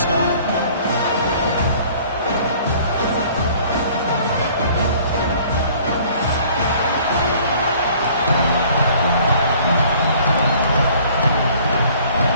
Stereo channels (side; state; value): both; inverted; correlation -0.54